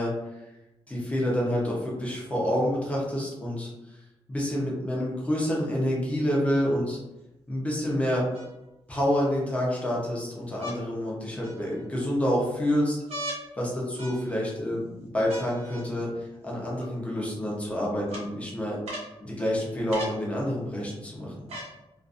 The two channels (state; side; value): normal; both; correlation 0.82